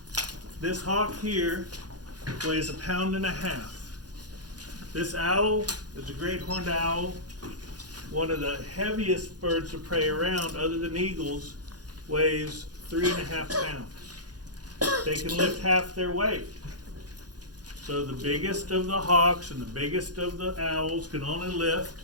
this hawk here weighs 1.5 pounds. This owl is a great horned owl, one of the heaviest birds of prey around, other than eagles, weighs 3.5 pounds. They can lift half their weight. So the biggest of the hawks and the biggest of the owls can only lift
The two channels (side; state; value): left; late; 0.69 ms